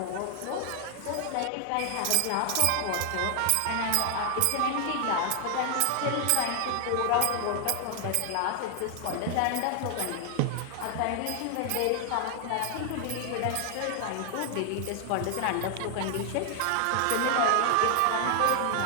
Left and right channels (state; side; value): different; both; correlation 0.00